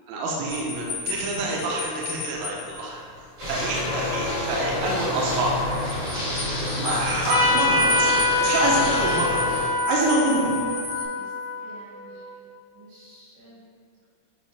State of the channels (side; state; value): left; late; 25 ms